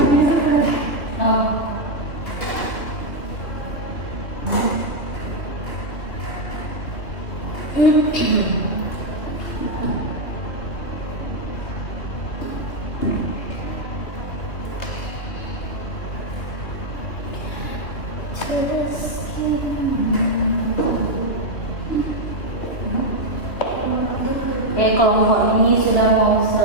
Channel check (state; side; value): late; right; 3.0 ms